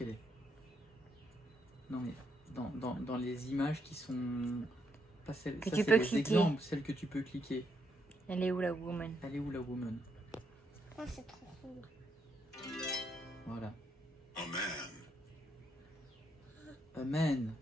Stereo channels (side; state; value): both; normal; correlation 0.77